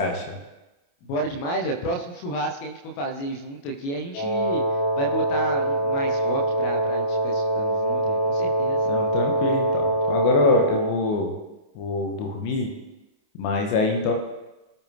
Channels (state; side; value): late; right; 28 ms